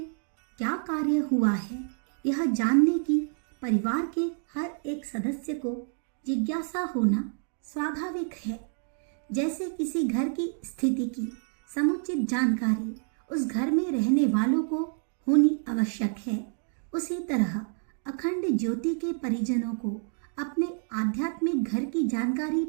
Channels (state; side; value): silent; left; 56 dB below the other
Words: क्या कार्य हुआ है, यह जानने की परिवार के हर एक सदस्य को जिज्ञासा होना स्वाभाविक है। जैसे किसी घर की स्थिति की समुचित जानकारी उस घर में रहने वालों को होनी आवश्यक है, उसी तरह अखंड ज्योति के परिजनों को अपने आध्यात्मिक घर की जानकारी